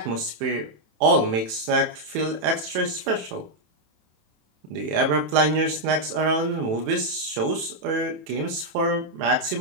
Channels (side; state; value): left; late; 27 ms